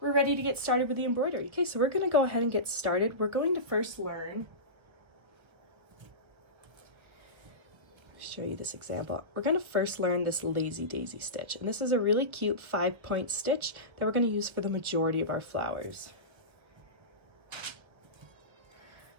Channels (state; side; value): late; left; 1.2 ms